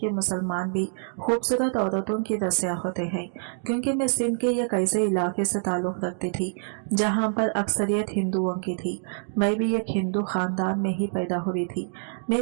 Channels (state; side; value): silent; left; digital silence